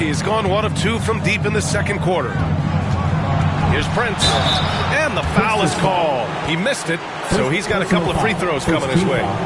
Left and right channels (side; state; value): both; identical; correlation 1.00